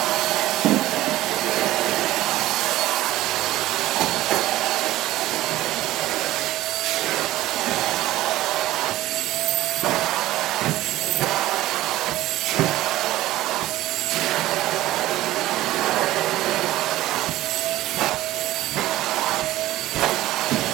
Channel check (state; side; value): quieter; left; 15.8 dB